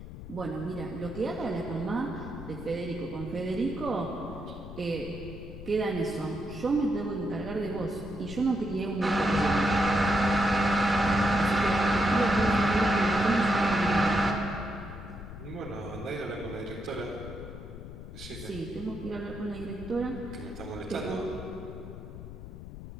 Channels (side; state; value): left; noise; rumble, 12 dB below the sound